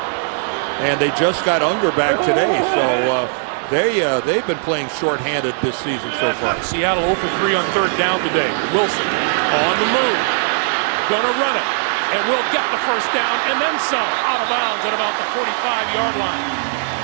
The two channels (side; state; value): left; silent; 62 dB below the other